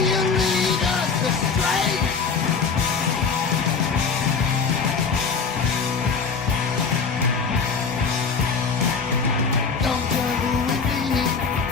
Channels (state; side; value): quieter; right; 5.3 dB